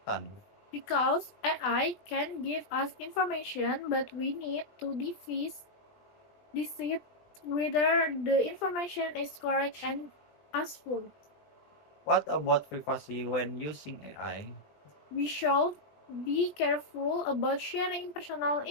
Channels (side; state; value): right; late; 20 ms